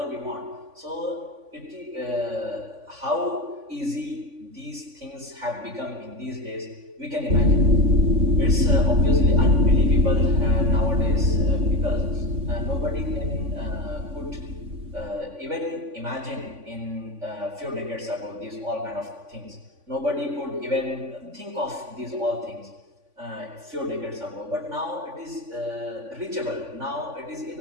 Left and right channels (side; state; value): left; late; 3.5 ms